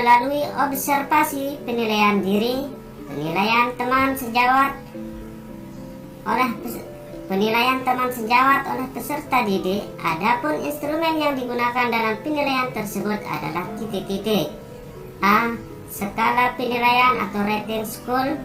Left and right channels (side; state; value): both; identical; correlation 1.00